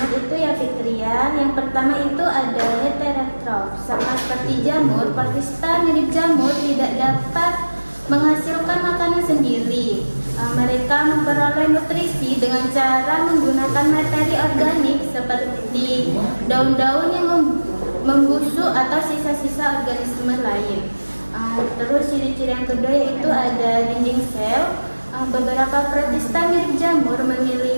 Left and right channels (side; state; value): both; inverted; correlation -1.00